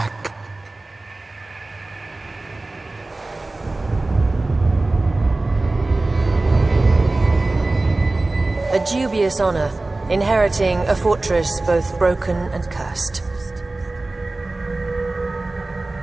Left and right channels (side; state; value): left; quieter; 3.1 dB